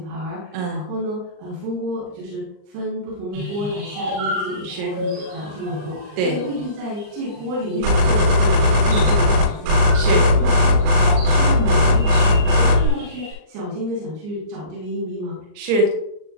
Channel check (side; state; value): left; late; 39 ms